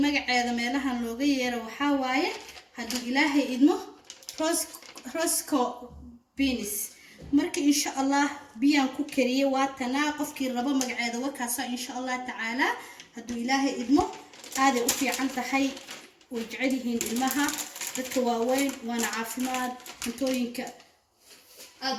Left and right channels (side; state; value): both; identical; correlation 1.00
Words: magaceeda meelahan looga yeero waxa waaye hadii ilaahay idmo rosco beans marka insha Allah biyaan ku kariye waa tanaa qofkii rabo magaceeda wakaasa insha Allah taala hadii ilaahay idmo aad u fiican tahay oo jecelihiin ilmaha dadka waaweyn waana caafimaad cuntooyinka aad